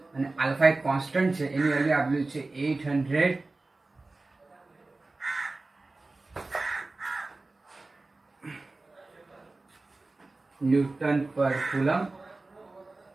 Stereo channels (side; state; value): left; quieter; 3.3 dB